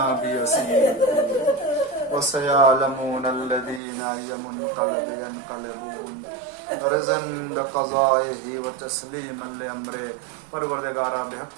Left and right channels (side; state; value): left; drops out; at 3.8 s